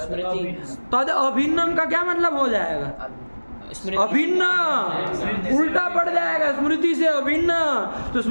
तद अभिन्नम का क्या मतलब हो जाएगा? स्मृति अभिन्न, उल्टा पड़ जाएगा। स्मृति से अभिन्न, तो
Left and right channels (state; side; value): inverted; both; correlation -1.00